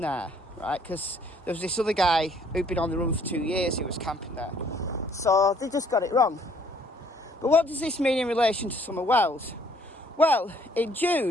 there, right, because there was this other guy who'd been on the run for 2 years who was camping there. So they just got it wrong. But what does this mean in relation to Summer Wells? Well, in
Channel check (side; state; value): both; normal; correlation 0.62